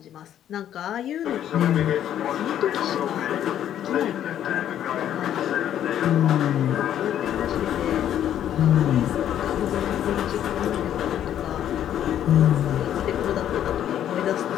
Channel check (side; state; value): right; quieter; 10.7 dB